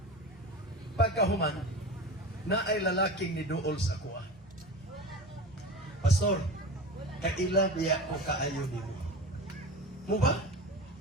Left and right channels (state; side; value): normal; both; correlation 0.30